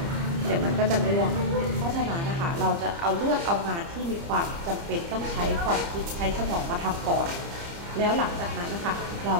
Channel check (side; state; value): left; late; 30 ms